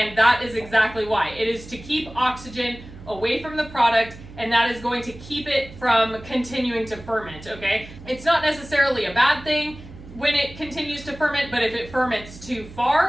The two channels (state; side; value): noise; right; hum, 17 dB below the sound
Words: that is exactly why. It is to keep oxygen away from the product, and that is going to keep it from continuing to ferment, okay? It's not necessarily a bad thing when it continues to ferment, but if it ferments too